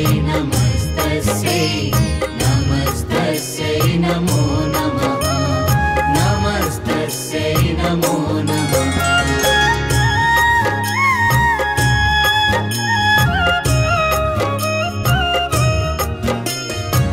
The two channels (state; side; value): identical; both; correlation 1.00